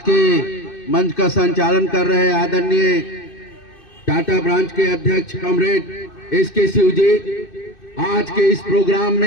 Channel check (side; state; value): right; late; 2.6 ms